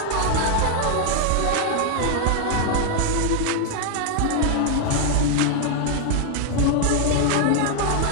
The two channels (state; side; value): different; both; correlation 0.00